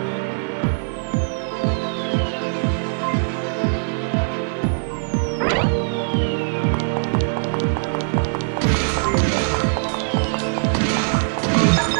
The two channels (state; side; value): silent; left; digital silence